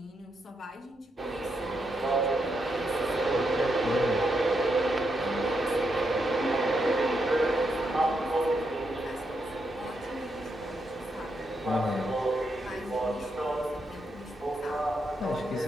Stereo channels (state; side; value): normal; both; correlation 0.81